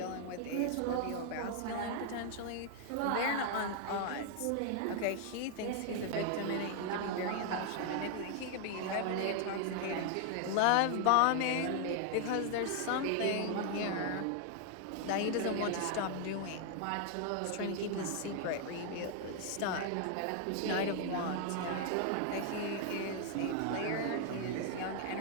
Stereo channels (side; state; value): both; different; correlation 0.00